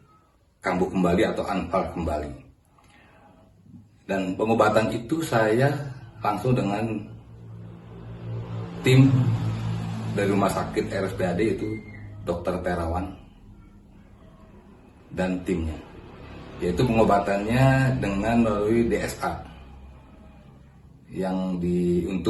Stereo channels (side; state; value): both; identical; correlation 1.00